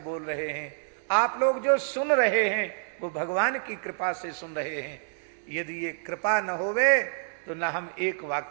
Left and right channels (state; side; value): silent; left; digital silence